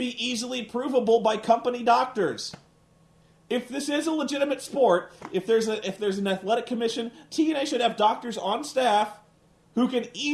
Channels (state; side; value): identical; both; correlation 1.00